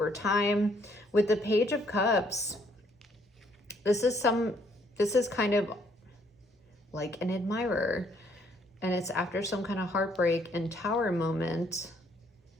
time. With the Page of Cups, this is kind of like an admirer. And it's after some kind of heartbreak and Tower moment.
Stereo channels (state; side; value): normal; both; correlation 0.67